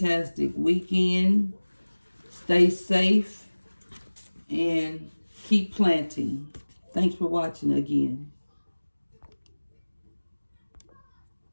weekend. Stay safe and keep planting. Thanks for watching again.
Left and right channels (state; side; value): inverted; both; correlation -1.00